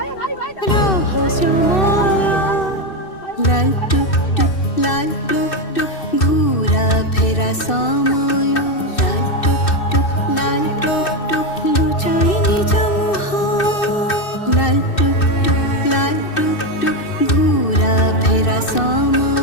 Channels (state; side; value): late; right; 2.6 ms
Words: রহস্যময় লাল টুকটুক লাল টুকটুক ঘুরা ফেরা সময় লাল টুকটুক লুচাই নিজ মুহ লাল টুকটুক ঘুরা ফেরা